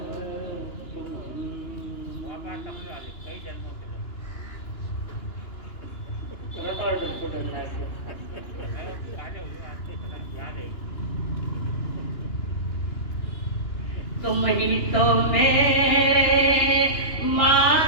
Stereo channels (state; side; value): late; right; 2.9 ms